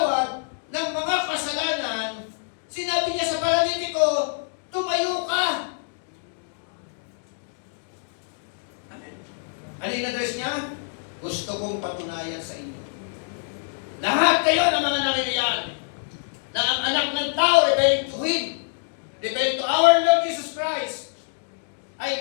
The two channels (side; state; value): right; silent; digital silence